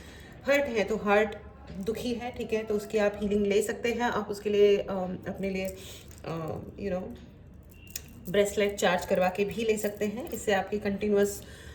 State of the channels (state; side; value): identical; both; correlation 1.00